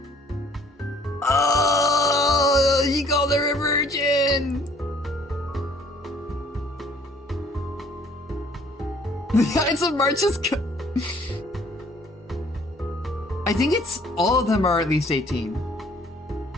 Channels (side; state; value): both; normal; correlation 0.58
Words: Oh, he called her a virgin. The Ides of March is I think it's all of them are at least 18.